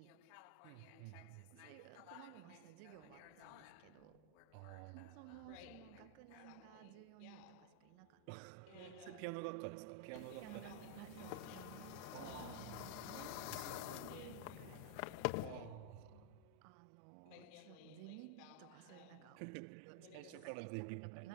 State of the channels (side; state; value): both; different; correlation 0.00